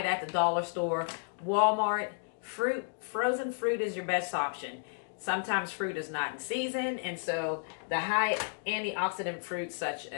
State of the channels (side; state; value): right; silent; digital silence